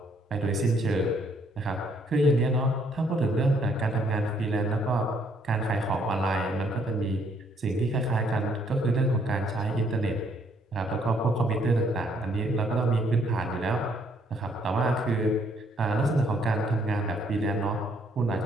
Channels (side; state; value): both; normal; correlation 0.67